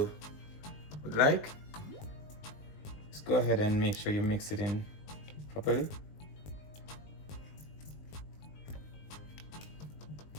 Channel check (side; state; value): right; late; 20 ms